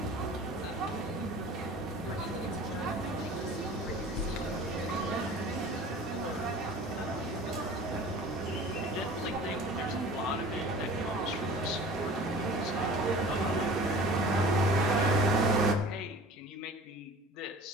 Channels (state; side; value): normal; both; correlation 0.42